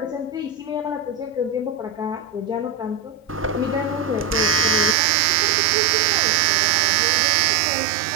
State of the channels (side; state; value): left; drops out; at 5.0 s